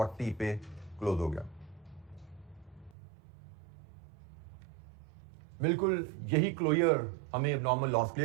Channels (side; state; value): left; drops out; at 3.0 s